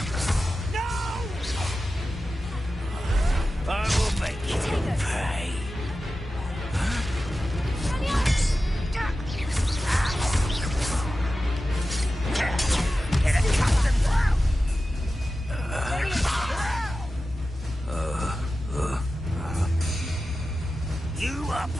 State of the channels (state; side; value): normal; both; correlation 0.93